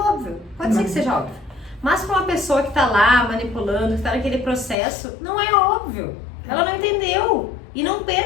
pode ser que seja óbvio. Mas para uma pessoa que está lá manipulando, que está naquele processo, não é óbvio. Ela não entendeu. E não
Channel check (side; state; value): right; drops out; at 4.8 s